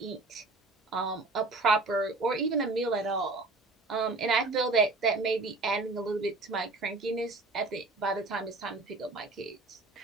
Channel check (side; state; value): left; quieter; 3.4 dB